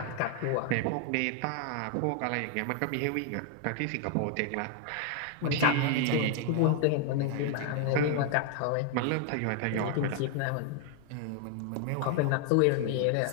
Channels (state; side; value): different; both; correlation 0.00